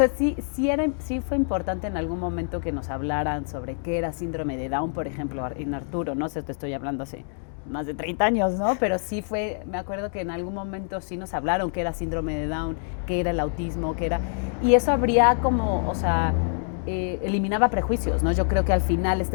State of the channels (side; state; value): right; silent; 59 dB below the other